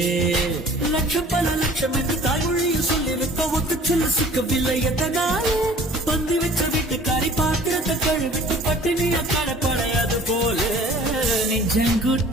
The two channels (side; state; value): both; normal; correlation 0.49